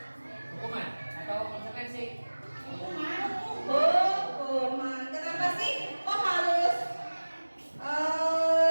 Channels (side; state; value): both; inverted; correlation -1.00